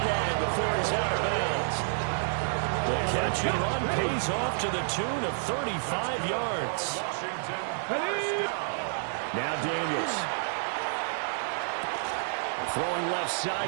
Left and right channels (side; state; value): left; silent; 58 dB below the other